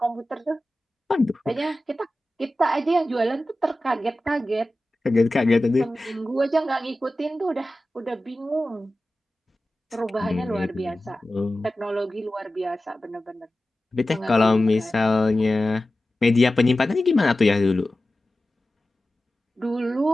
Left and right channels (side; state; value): both; normal; correlation 0.95